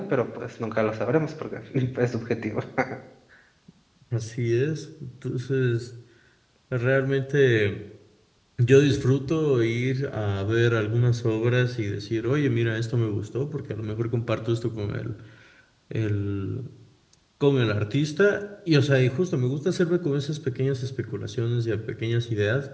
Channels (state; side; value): identical; both; correlation 1.00